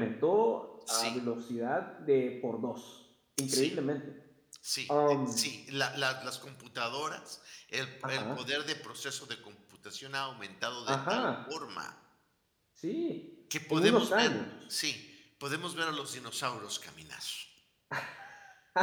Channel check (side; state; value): both; identical; correlation 1.00